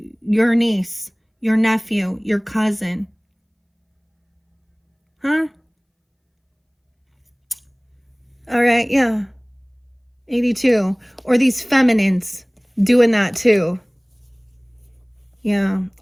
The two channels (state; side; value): identical; both; correlation 1.00